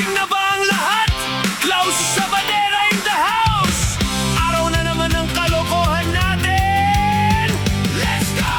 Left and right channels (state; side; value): identical; both; correlation 1.00